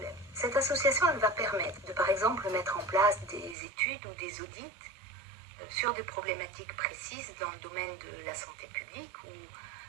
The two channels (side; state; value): left; drops out; at 3.6 s